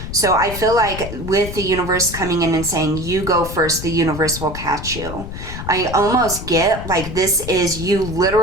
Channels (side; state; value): left; noise; rumble, 9 dB below the sound